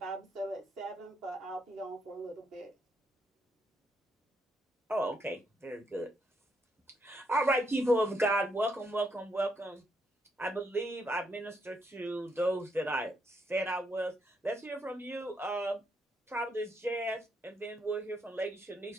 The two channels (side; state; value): both; normal; correlation 0.76